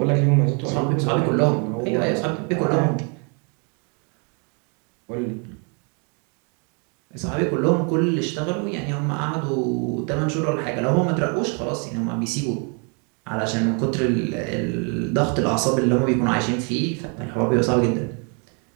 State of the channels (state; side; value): quieter; left; 36.7 dB